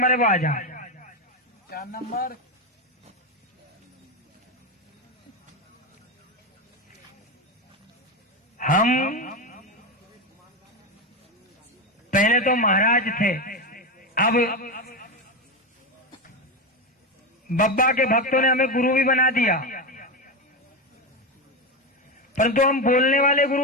है वो आ जाए। क्या नंबर? हम पहले तो महाराज थे, अब बब्बा के भक्तों ने हमें गुरु भी बना दिया, परंतु हम बोलने वाले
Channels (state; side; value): normal; both; correlation 0.13